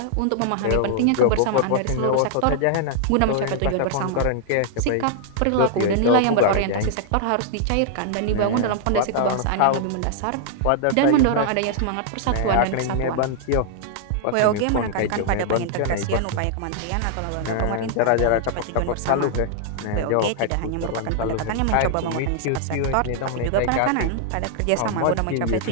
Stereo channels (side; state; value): both; different; correlation -0.01